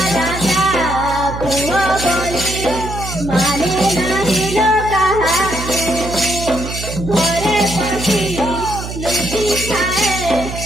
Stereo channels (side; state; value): right; noise; hum, 8 dB below the sound